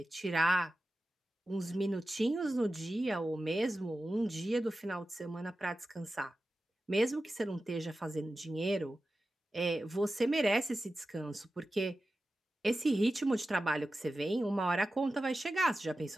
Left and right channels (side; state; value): both; normal; correlation 0.93